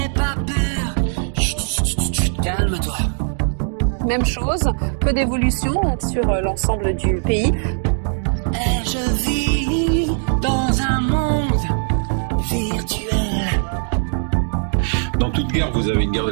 pas peur. Calme-toi. Même chose, peu d'évolution sur l'ensemble du pays. Et je vis dans un monde virtuel. Dans toute guerre, vous avez une guerre de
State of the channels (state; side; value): silent; left; digital silence